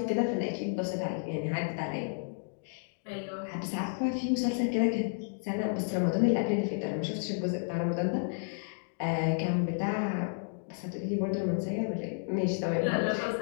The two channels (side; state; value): right; silent; digital silence